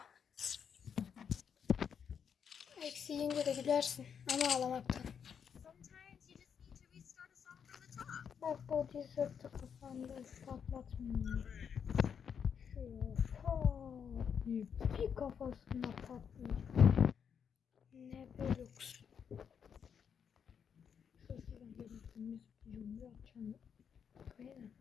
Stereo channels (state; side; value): quieter; right; 7.3 dB